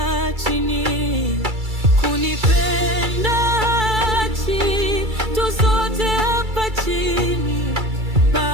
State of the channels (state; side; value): late; left; 2.3 ms